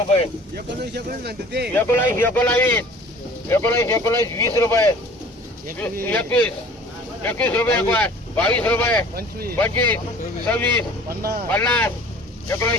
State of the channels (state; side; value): normal; both; correlation 0.47